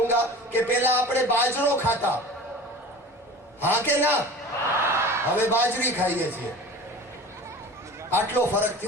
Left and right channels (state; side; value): normal; both; correlation 0.38